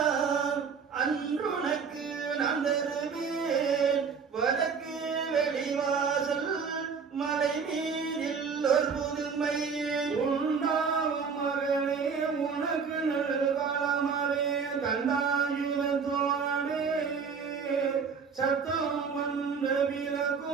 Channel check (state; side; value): quieter; left; 5.8 dB